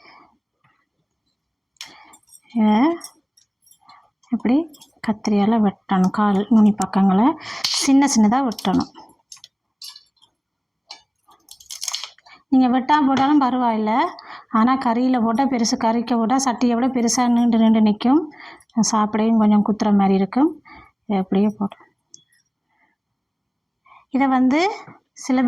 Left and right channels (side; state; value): both; identical; correlation 1.00